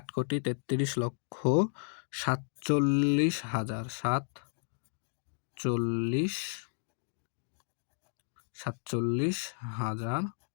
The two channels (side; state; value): right; silent; digital silence